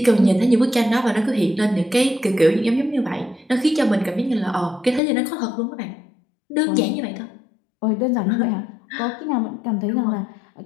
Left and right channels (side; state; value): right; drops out; at 5.0 s